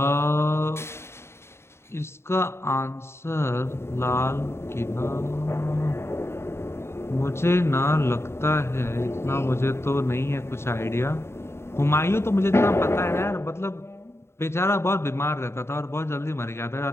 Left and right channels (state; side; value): late; right; 0.12 ms